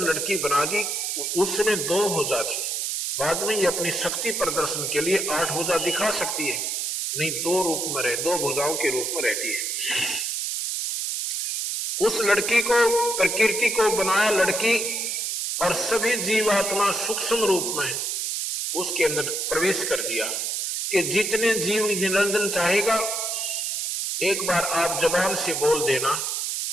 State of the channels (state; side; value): noise; right; hiss, 1 dB below the sound